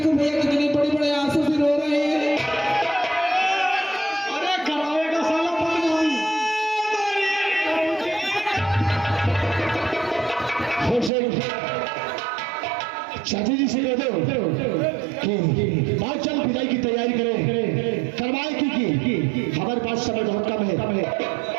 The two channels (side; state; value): left; drops out; at 11.1 s